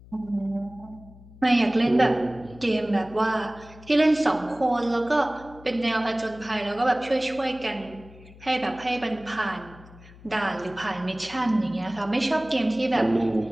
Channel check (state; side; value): noise; left; hum, 21 dB below the sound